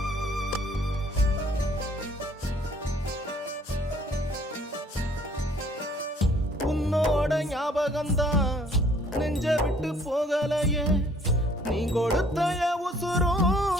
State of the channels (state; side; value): normal; both; correlation 0.59